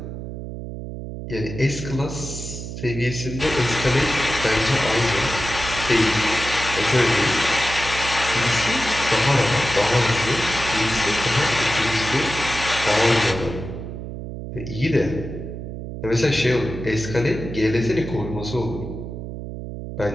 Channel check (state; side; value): noise; right; hum, 8 dB below the sound